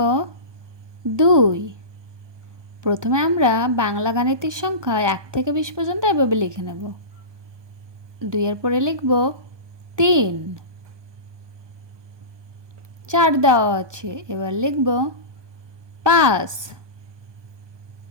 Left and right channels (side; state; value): left; late; 1.2 ms